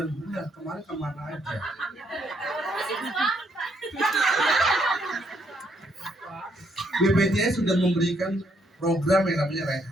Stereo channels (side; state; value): both; normal; correlation 0.72